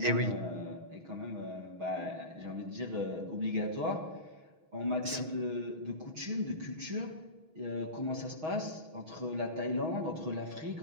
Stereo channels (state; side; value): late; left; 6.3 ms